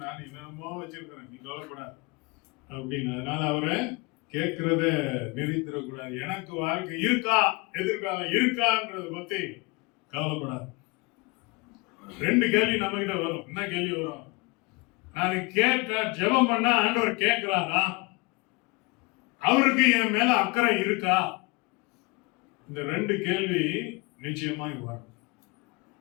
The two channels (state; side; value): quieter; right; 26.9 dB